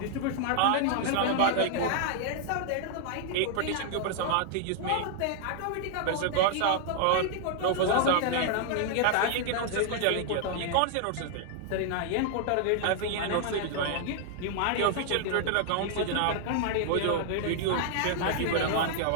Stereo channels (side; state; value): both; different; correlation -0.01